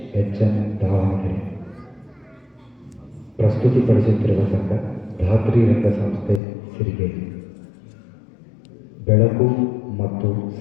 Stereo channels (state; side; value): drops out; right; at 6.4 s